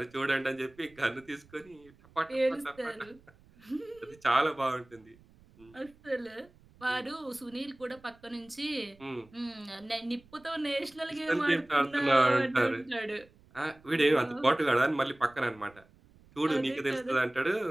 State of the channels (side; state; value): right; noise; rumble, 27 dB below the sound